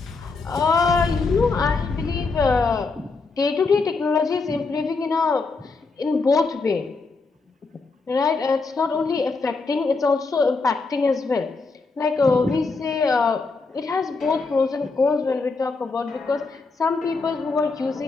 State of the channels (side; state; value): right; quieter; 4.1 dB